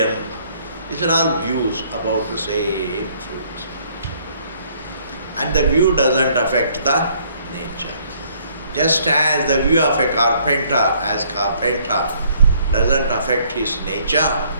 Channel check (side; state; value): both; inverted; correlation -0.63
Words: These are all views about the same truth. And the view doesn't affect the nature. Just as the view of a carpenter as carpenter doesn't affect his nature